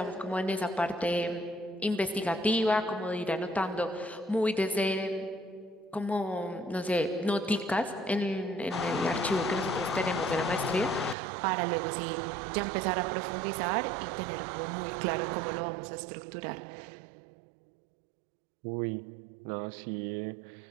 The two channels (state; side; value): drops out; left; at 11.2 s